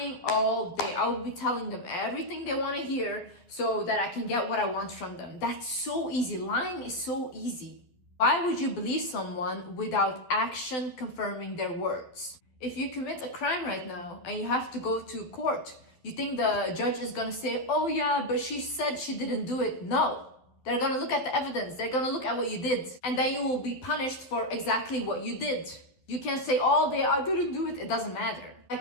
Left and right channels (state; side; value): late; right; 11 ms